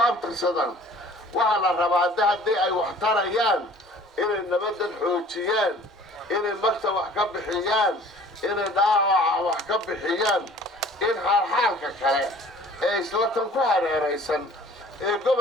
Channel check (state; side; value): normal; both; correlation 0.50